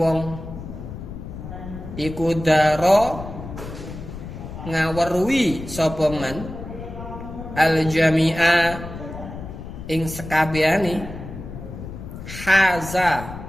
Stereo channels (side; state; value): left; noise; rumble, 11 dB below the sound